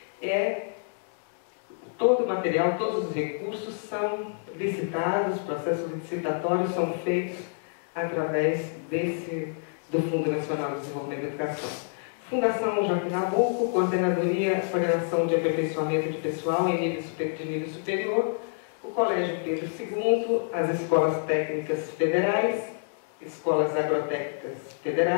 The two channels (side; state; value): right; silent; 60 dB below the other